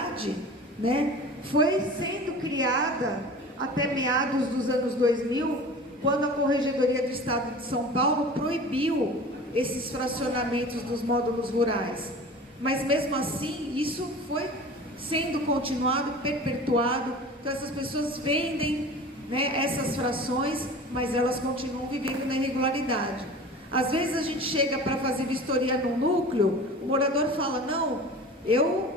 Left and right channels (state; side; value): normal; both; correlation 0.38